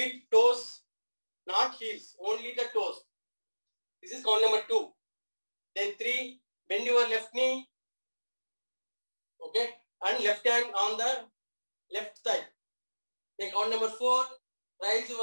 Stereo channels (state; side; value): inverted; both; correlation -1.00